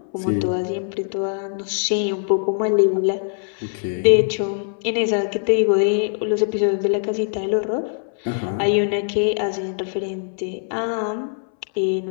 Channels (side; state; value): right; silent; 64 dB below the other